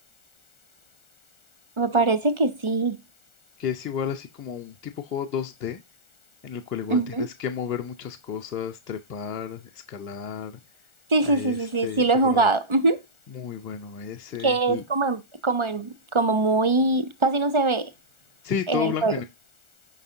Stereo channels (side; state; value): left; late; 1.4 ms